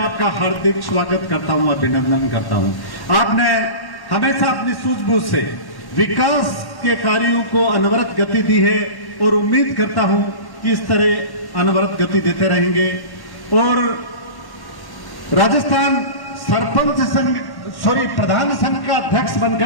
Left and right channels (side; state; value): right; late; 1.1 ms